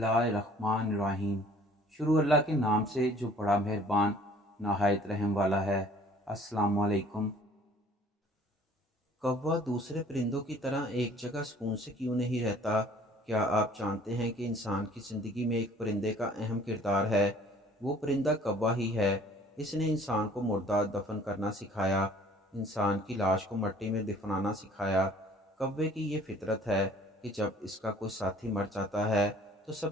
الرحمن الرحیم۔ شروع اللہ کے نام سے جو بڑا مہربان نہایت رحم والا ہے۔ السلام علیکم۔ کوّا دوسرے پرندوں کی طرح ایک جگہ سکون سے کیوں نہیں رہتا؟ کیا آپ جانتے ہیں کہ انسان کی زندگی میں ایک پرندے کا اہم کردار ہے؟ وہ پرندہ کوّا ہی ہے۔ اس نے انسان کو مردہ دفن کرنا سکھایا، انسان کی لاش کو مٹی میں دفنانا سکھایا۔ کوّے کی یہ فطرت ہے کہ جب اس کا کوئی ساتھی مر جاتا ہے تو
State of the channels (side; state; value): both; normal; correlation 0.54